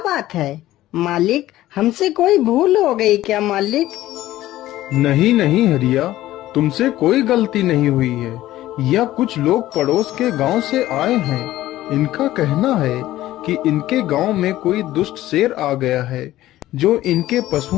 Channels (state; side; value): quieter; right; 15.0 dB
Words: है। मालिक, हमसे कोई भूल हो गई क्या मालिक? नहीं नहीं हरिया, तुमसे कोई गलती नहीं हुई है। यह कुछ लोग पड़ोस के गांव से आए हैं। इनका कहना है कि इनके गांव में कोई दुष्ट शेर आ गया है जो इनके